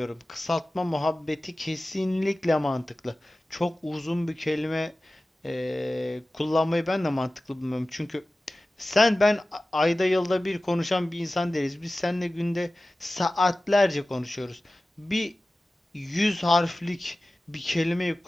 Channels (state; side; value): normal; both; correlation 0.96